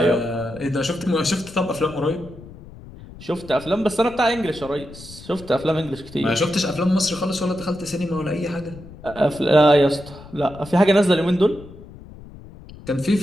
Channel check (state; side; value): noise; left; rumble, 17 dB below the sound